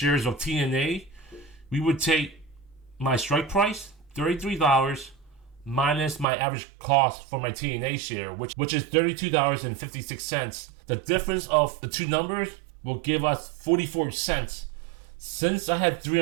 of TNA. We would take my strike price, $33, minus my average cost for my TNA share, which is $32.56. The difference of the 2 numbers will give us 44 cents. Since I had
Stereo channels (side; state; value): left; drops out; at 6.2 s